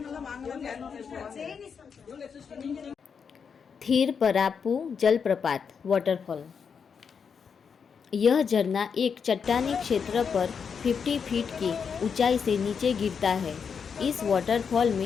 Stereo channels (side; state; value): right; quieter; 6.4 dB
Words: थिरपरापू जलप्रपात वाटरफॉल। यह झरना एक चट्टानी क्षेत्र पर 50 फीट की ऊंचाई से नीचे गिरता है। इस वाटरफॉल